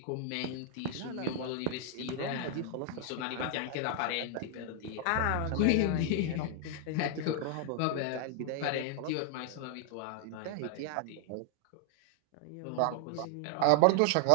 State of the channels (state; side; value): different; both; correlation 0.00